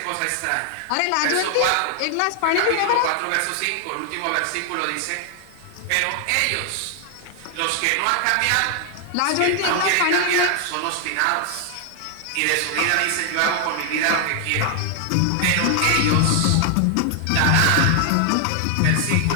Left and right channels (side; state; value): both; different; correlation 0.00